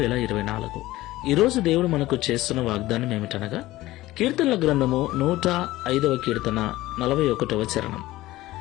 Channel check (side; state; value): right; quieter; 17.1 dB